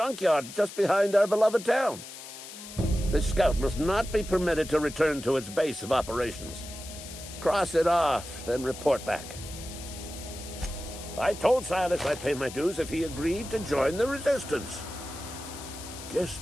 just behind our beloved town. This scout must not be permitted to return to its base of operations. Cross it off, then report back. I told Silas I'd pay my dues if he agreed to join the Resistance. Guess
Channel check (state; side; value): noise; left; hiss, 13 dB below the sound